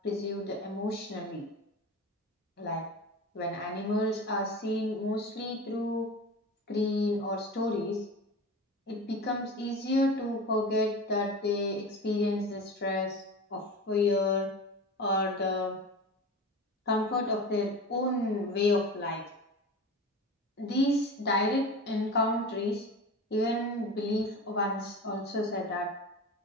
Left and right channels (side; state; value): both; normal; correlation 0.31